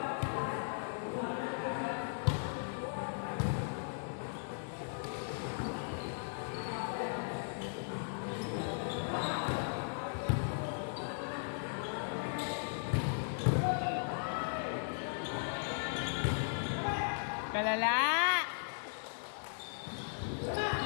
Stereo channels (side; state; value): right; silent; digital silence